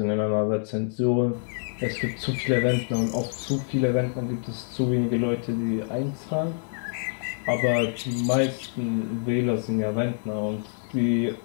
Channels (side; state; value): right; silent; 57 dB below the other